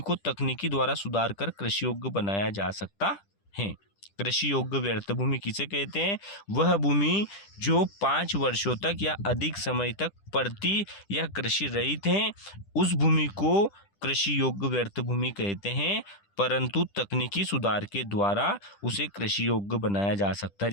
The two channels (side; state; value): right; late; 10 ms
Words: को तकनीकी द्वारा सुधार कर कृषि योग्य बनाया जा सकता है। कृषि योग्य व्यर्थ भूमि किसे कहते हैं? वह भूमि जो 5 वर्षों तक या अधिक समय तक परती या कृषि रहित है, उस भूमि को कृषि योग्य व्यर्थ भूमि कहते हैं। परंतु तकनीकी सुधार के द्वारा उसे कृषि योग्य बनाया जा सकता है।